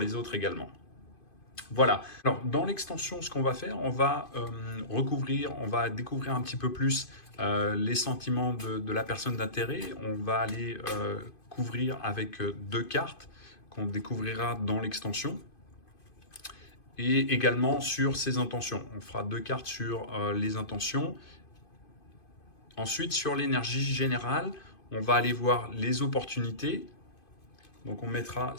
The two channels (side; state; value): right; late; 2.5 ms